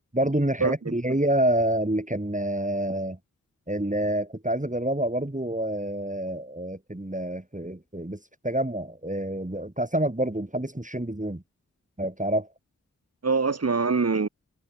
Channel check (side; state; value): both; normal; correlation 0.28